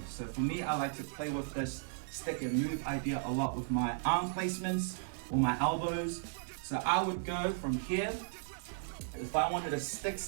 So for me, I like to play with this stick and move idea a lot with my arm placements or my elbows. So I would go from here. If I wanted to stick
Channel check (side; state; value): left; silent; digital silence